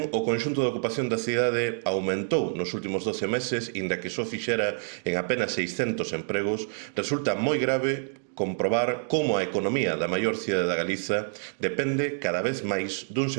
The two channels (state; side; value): silent; left; digital silence